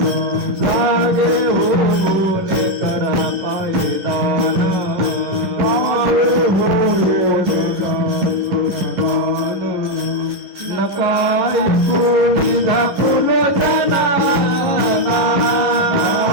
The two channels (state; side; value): late; left; 10 ms